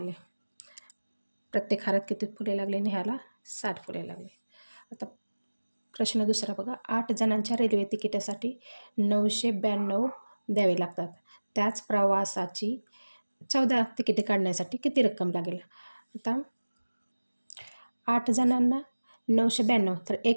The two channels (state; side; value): inverted; both; correlation -1.00